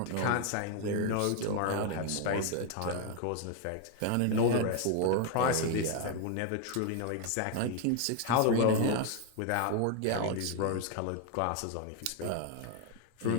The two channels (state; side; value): different; both; correlation 0.00